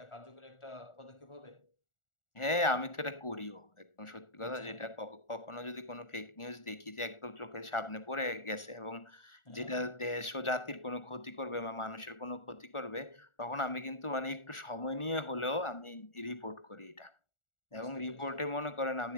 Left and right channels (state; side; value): late; right; 1.4 ms